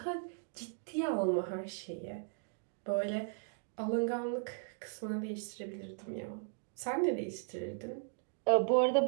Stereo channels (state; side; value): silent; left; digital silence